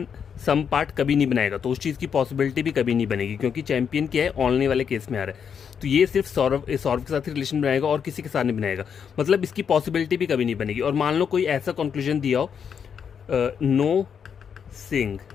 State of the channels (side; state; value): right; quieter; 7.3 dB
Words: सम पार्ट कभी नहीं बनाएगा, तो उस चीज़ की पॉसिबिलिटी भी कभी नहीं बनेगी, क्योंकि चैंपियन क्या है? ओनली वाले केस में आ रहा है। तो ये सिर्फ सौरव के साथ ही रिलेशन बनाएगा और किसी के साथ नहीं बनाएगा, मतलब इसकी पॉसिबिलिटी भी कभी नहीं बनेगी। और मान लो कोई ऐसा कंक्लूजन दिया हो,